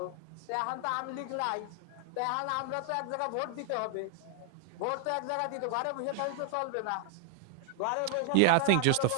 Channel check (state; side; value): different; both; correlation -0.01